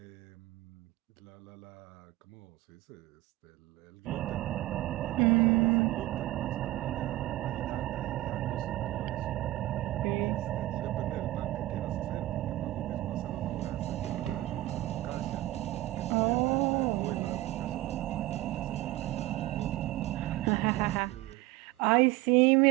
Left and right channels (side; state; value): left; quieter; 16.9 dB